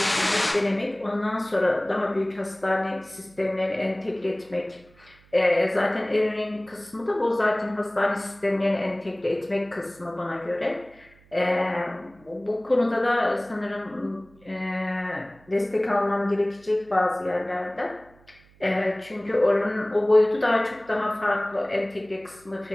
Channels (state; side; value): noise; right; hum, 28 dB below the sound